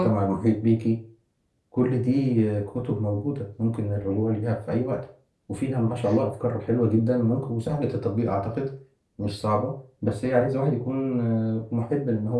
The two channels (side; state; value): both; identical; correlation 1.00